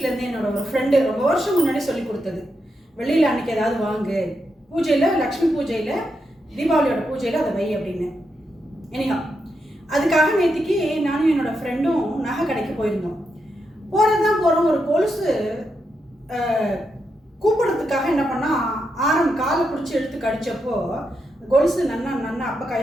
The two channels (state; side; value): normal; both; correlation 0.84